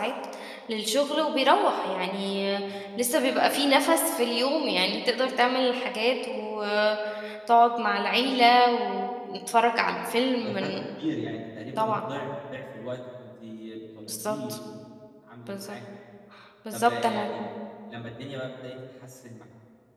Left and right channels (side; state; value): both; identical; correlation 1.00